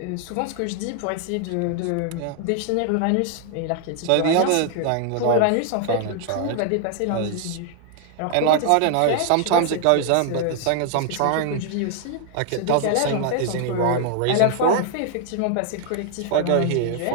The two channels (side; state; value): both; different; correlation 0.00